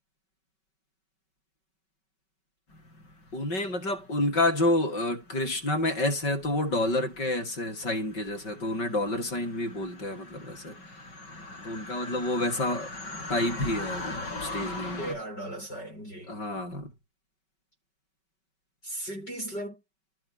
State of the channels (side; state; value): right; late; 5.3 ms